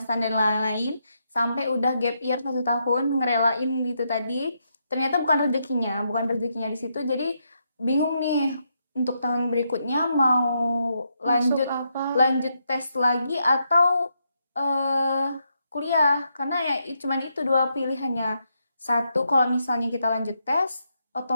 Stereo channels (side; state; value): both; inverted; correlation -0.80